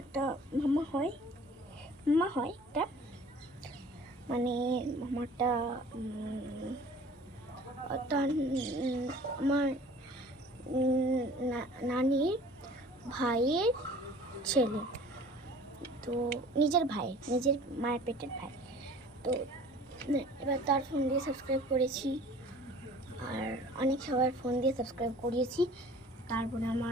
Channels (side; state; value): both; normal; correlation 0.48